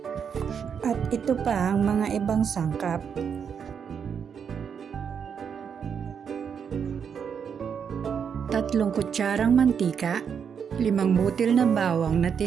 at ito pa ang mga ibang sangkap. Tatlong kutsarang mantika, 5 butil na bawang na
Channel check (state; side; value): quieter; left; 7.2 dB